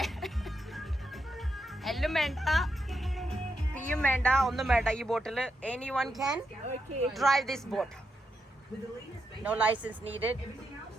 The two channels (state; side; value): normal; both; correlation 0.83